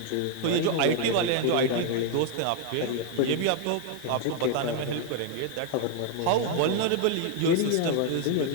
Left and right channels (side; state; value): both; different; correlation 0.00